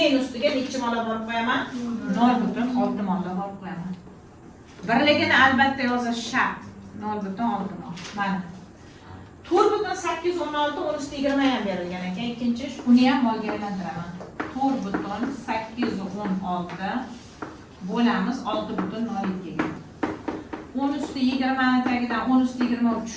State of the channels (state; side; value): identical; both; correlation 1.00